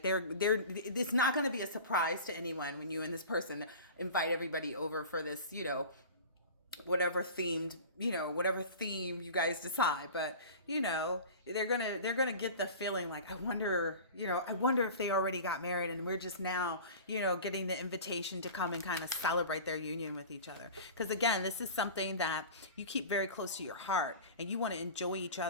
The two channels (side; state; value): both; inverted; correlation -0.37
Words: it's not going to be a surprise to anyone when you and this person invite everybody over for this, whatever theme you guys decide. But they're gonna get the feeling like, I wonder if they already got married and we're just now, getting the invitation to come and kind of celebrate their union with each other. Because again, this is something that you keep very close to your heart, and you want to enjoy each